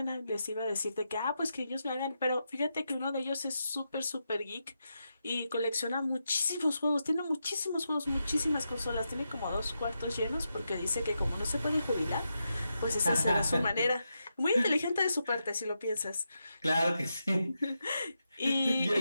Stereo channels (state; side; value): inverted; both; correlation -0.86